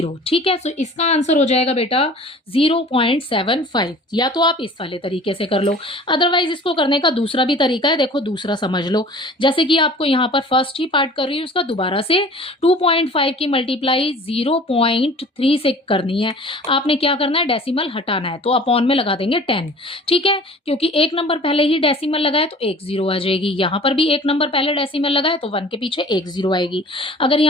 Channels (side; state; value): both; normal; correlation 0.45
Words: ठीक है। सो इसका आंसर हो जाएगा बेटा 0.75। या तो आप इस वाले तरीके से कर लो, अदरवाइज इसको करने का दूसरा भी तरीका है। देखो दूसरा समझ लो, जैसे कि आपको यहाँ पर फर्स्ट ही पार्ट कर रही हूँ, उसका दोबारा से 2.5 की मल्टीप्लाई 0.3 से करनी है। आपने क्या करना है, डेसिमल हटाना है, तो अपॉन में लगा देंगे 10, ठीक है। क्योंकि एक नंबर पहले ही डेसिमल लगाए तो एक 0 आ जाएगी। यहाँ पर भी एक नंबर पहले डेसिमल लगाए तो 1 के पीछे एक 0 आएगी। अगर